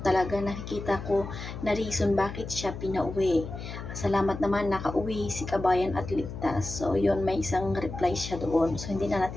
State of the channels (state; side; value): noise; left; hum, 9 dB below the sound